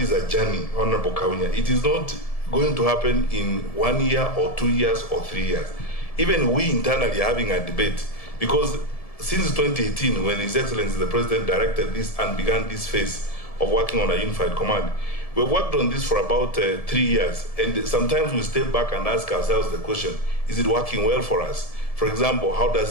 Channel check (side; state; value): right; late; 1.7 ms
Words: a journey, Honorable Kaunya. It is not going to happen in 1 year or 2 years or 3 years. Even we internally are having a debate, because since 2018, when His Excellency the President directed this and began this phase of working on a unified command, we've worked on this for about 3 years, and sometimes we step back and ask ourselves the question, is it working well for us? For example, how